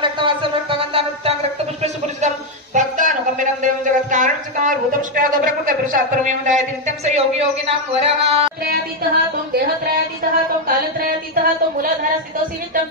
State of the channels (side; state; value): both; normal; correlation 0.03